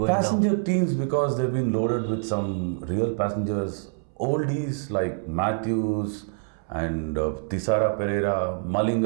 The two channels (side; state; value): left; silent; 61 dB below the other